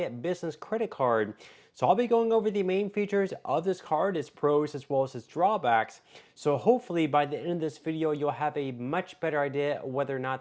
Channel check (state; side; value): identical; both; correlation 1.00